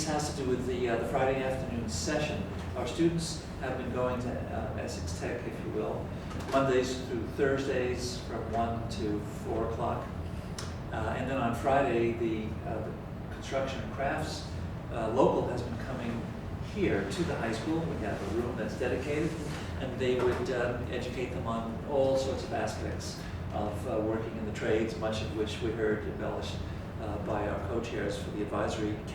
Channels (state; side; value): identical; both; correlation 1.00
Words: has to do with the Friday afternoon session. Our students have been going to Essex Tech, if you will, Mondays through Thursdays from 1 to 4 o'clock. And then on Friday, the construction and crafts local has been coming here to the high school. We have a room that's dedicated, and they would educate them on all sorts of aspects of working in the trades, much of which we heard embellished by our co-chairs for the advisory